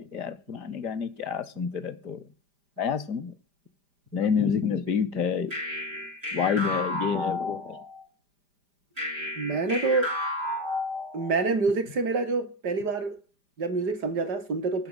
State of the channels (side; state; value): left; late; 5.0 ms